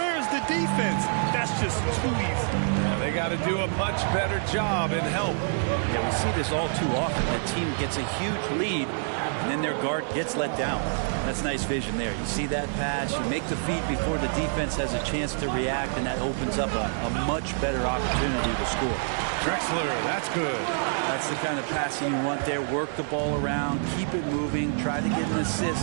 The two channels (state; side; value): silent; left; digital silence